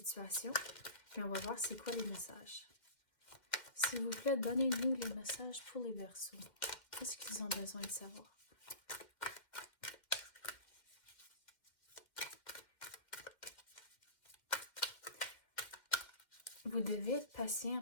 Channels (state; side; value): late; right; 2.1 ms